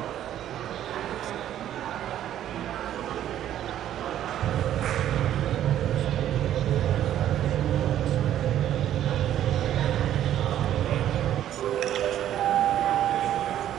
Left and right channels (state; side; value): quieter; left; 11.5 dB